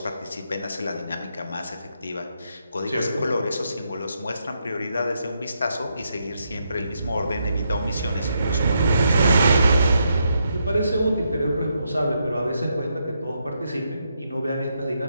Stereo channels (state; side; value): inverted; both; correlation -0.80